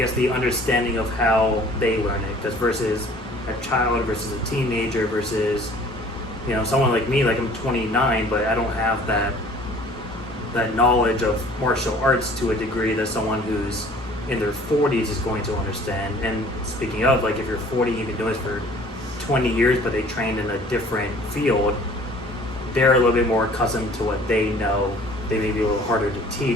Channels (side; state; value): both; normal; correlation 0.51